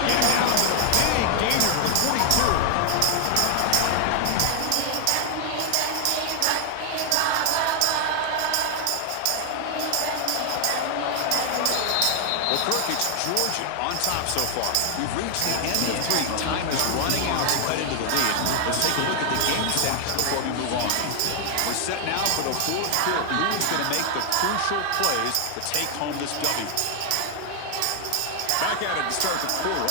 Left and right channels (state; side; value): different; both; correlation 0.00